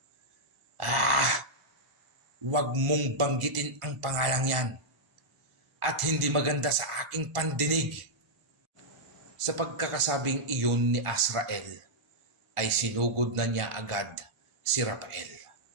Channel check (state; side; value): late; left; 1.4 ms